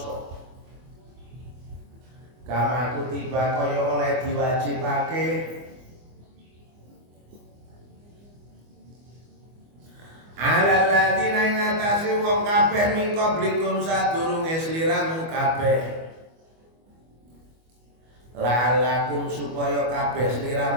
Kama kutiba kaya oleh diwajibake alal ladzina ing atase wong kabeh min qablikum sadurunge sliramu kabeh. La'alakum supaya kabeh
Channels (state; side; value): late; left; 25 ms